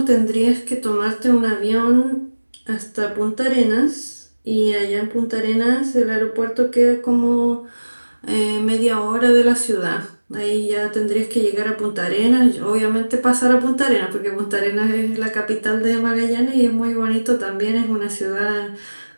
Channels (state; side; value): inverted; both; correlation -1.00